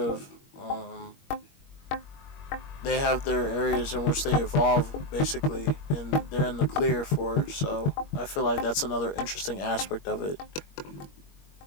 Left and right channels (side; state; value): right; late; 21 ms